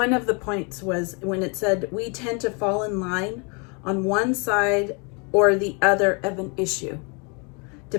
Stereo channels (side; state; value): right; quieter; 33.6 dB